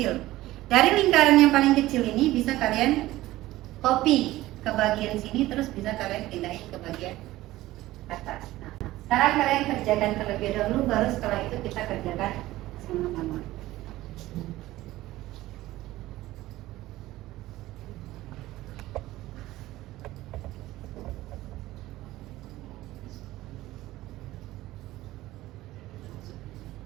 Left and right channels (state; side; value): quieter; left; 16.7 dB